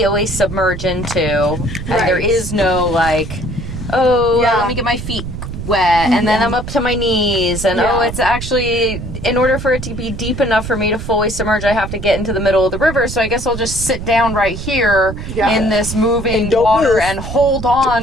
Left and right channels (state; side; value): noise; right; rumble, 8 dB below the sound